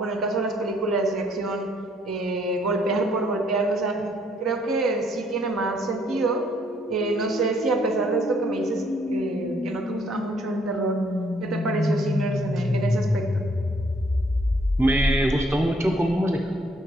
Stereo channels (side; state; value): both; normal; correlation 0.66